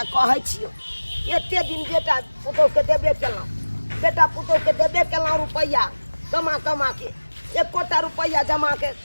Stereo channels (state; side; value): inverted; both; correlation -1.00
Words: कहै छियो एते दिन बेटा पुतोह के देबे केलहुँ, बेटा पुतोह के देबे केलहुँ रुपैया कमा कमा के, एकोटा रुपैया जमा